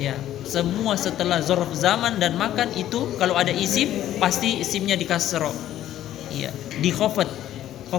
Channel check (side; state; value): right; quieter; 12.4 dB